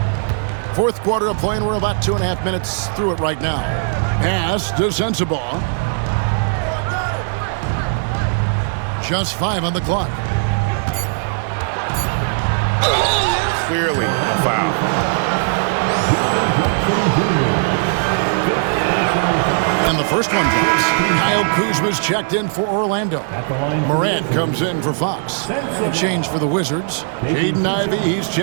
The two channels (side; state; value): left; silent; 65 dB below the other